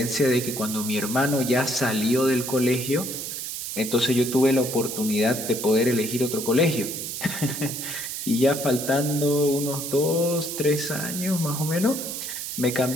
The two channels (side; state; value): right; noise; hiss, 6 dB below the sound